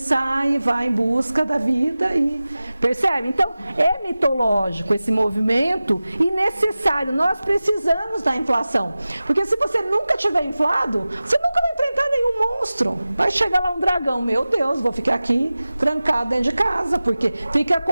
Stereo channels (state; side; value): inverted; both; correlation -0.96